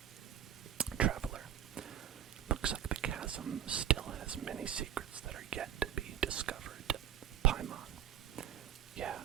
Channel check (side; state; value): left; quieter; 10.4 dB